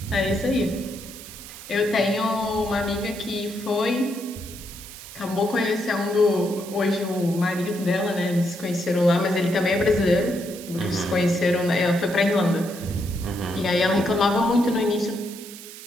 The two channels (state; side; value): noise; right; hiss, 14 dB below the sound